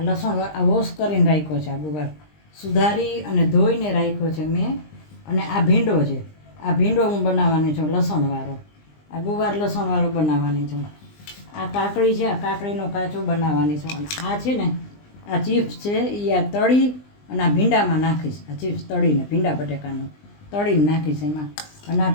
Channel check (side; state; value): right; late; 20 ms